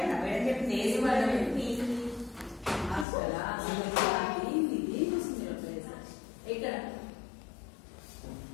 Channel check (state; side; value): drops out; right; at 3.1 s